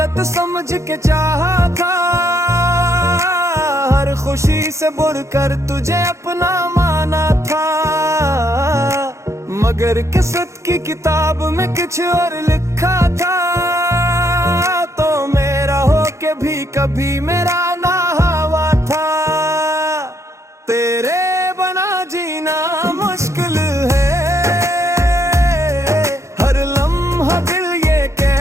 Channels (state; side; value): late; left; 0.14 ms